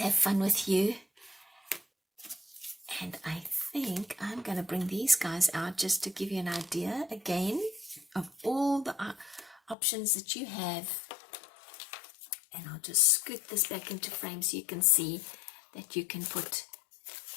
fun with you. And I think I'm going to bring these guys out just to give you an idea again of all the options that you have. And I'll just scoot this back into frame so you can see that you can put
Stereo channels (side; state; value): right; drops out; at 9.8 s